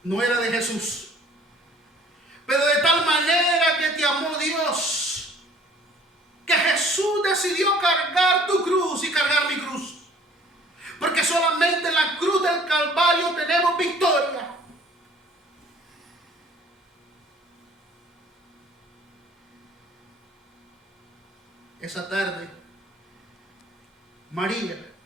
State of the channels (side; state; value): both; normal; correlation 0.54